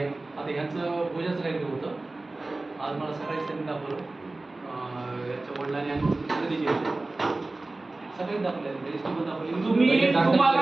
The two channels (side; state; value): left; quieter; 3.1 dB